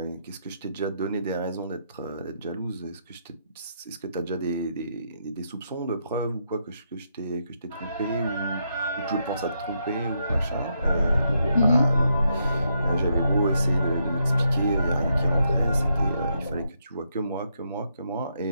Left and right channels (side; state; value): both; inverted; correlation -0.79